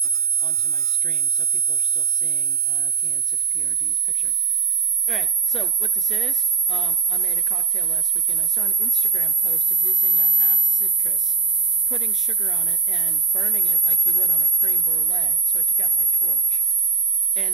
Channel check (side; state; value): left; quieter; 4.9 dB